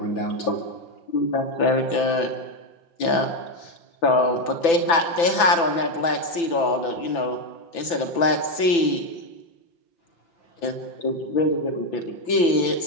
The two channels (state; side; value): late; right; 5.9 ms